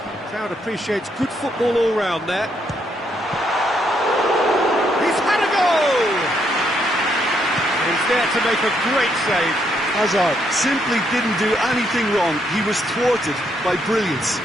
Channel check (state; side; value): normal; both; correlation 0.75